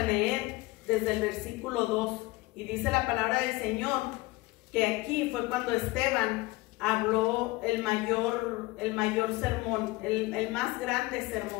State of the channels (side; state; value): right; quieter; 21.5 dB